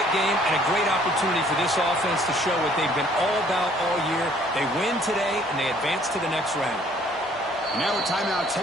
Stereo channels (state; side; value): normal; both; correlation 0.60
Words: game and a great opportunity for this offense to show what they've been all about all year. They win today, and they advance to the next round. Now a timeout